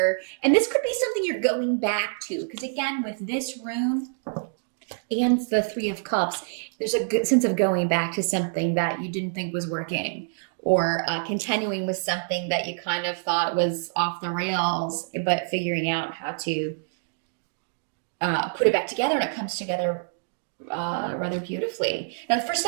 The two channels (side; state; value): left; silent; digital silence